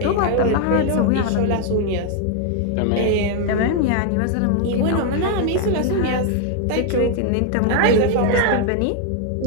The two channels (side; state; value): both; different; correlation 0.01